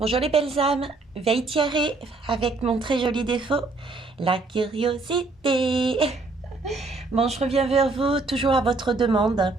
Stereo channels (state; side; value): quieter; left; 3.6 dB